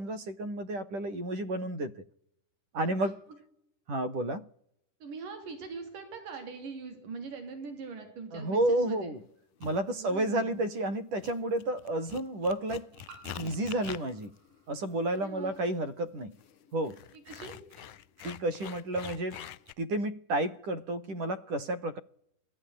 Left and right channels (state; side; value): late; left; 10 ms